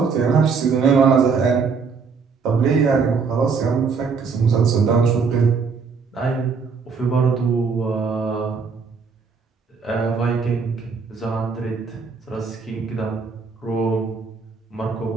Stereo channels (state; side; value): quieter; left; 5.3 dB